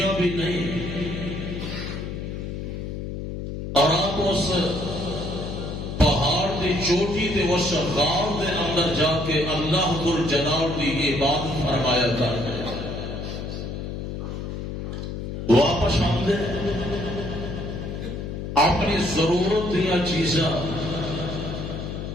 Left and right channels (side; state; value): left; noise; hum, 6 dB below the sound